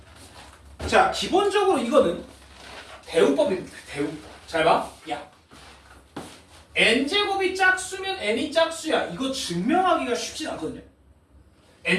자, 기본적으로 이거는 대우법입니다. 대우법. 잘 봐. 야, n제곱이 짝수면 n이 짝수야. 이거 증명하기가 쉽진 않거든요.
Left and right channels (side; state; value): both; identical; correlation 1.00